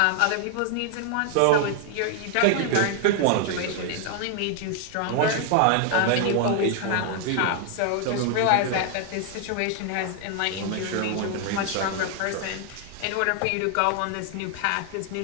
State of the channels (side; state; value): both; different; correlation 0.00